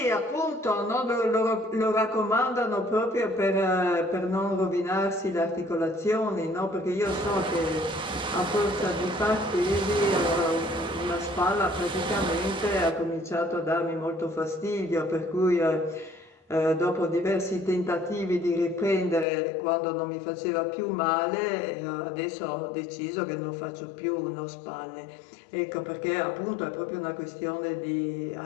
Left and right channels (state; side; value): drops out; right; at 19.2 s